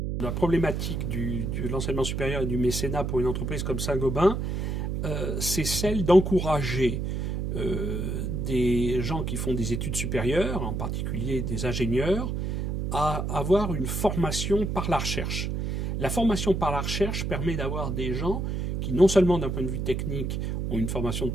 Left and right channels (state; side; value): noise; right; hum, 1 dB below the sound